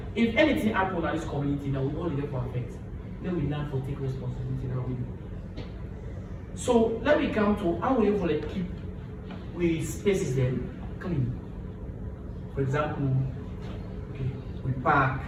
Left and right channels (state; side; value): identical; both; correlation 1.00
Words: If anything happen in this community now, we only there for affect. Then we learn for take responsibility now we do. So let me come to how we able to keep we spaces then clean. For example, okay, we park,